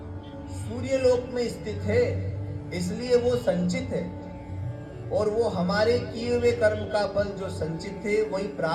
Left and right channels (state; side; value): identical; both; correlation 1.00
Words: सूर्यलोक में स्थित है, इसलिए वो संचित है। और वो हमारे किए हुए कर्म का फल जो संचित है वही